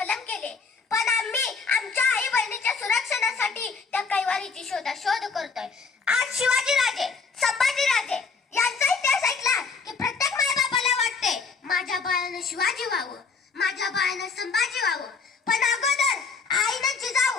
केले, पण आम्ही आमच्या आई बहिणीच्या सुरक्षणासाठी त्या कैवारीची शोध करतोय. आज शिवाजी राजे, संभाजी राजे यांचा इतिहास ऐकला की प्रत्येक मायबापाला वाटते माझ्या बाळानं शिवाजी व्हावं, माझ्या बाळानं संभाजी व्हावं, पण अगोदर आईनं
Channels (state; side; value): quieter; right; 5.0 dB